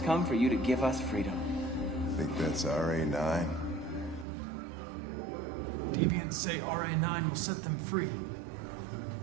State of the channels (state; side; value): drops out; left; at 4.2 s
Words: come for you to give us freedom. Think that's RA9? Deviants say RA9 will set them free.